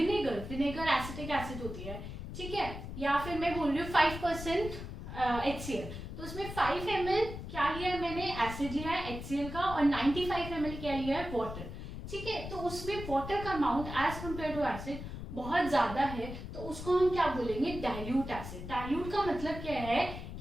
एसिटिक एसिड होती है, ठीक है। या फिर मैं बोल रही हूँ 5% HCl, तो उसमें 5 ml क्या लिया है मैंने? एसिड लिया है HCl का, और 95 ml क्या लिया है? वाटर, ठीक है। तो उसमें वाटर का amount as compare to acid बहुत ज्यादा है, तो उसको हम क्या बोलेंगे? Dilute acid. डाइल्यूट का मतलब क्या है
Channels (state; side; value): noise; left; rumble, 9 dB below the sound